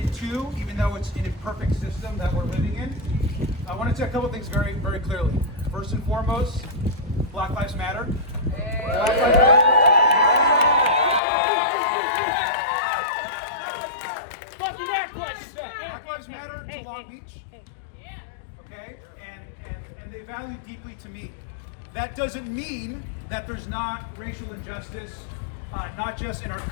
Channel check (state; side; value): drops out; right; at 11.2 s